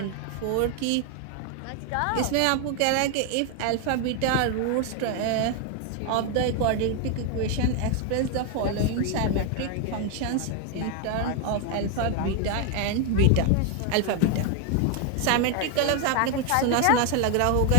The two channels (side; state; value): both; different; correlation 0.01